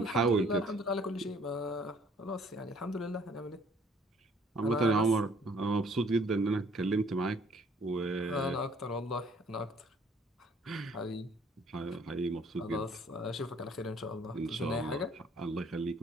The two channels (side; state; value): both; normal; correlation 0.60